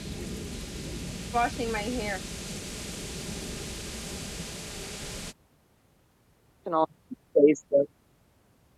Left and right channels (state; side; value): identical; both; correlation 1.00